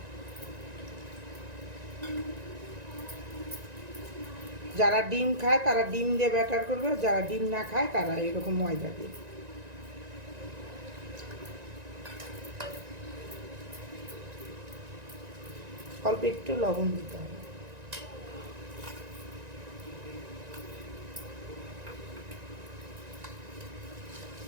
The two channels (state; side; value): late; left; 1.9 ms